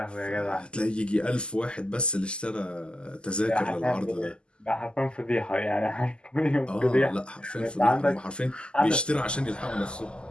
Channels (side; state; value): right; late; 0.050 ms